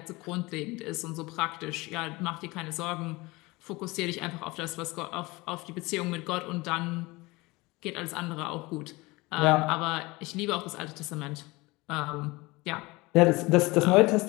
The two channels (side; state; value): right; quieter; 22.7 dB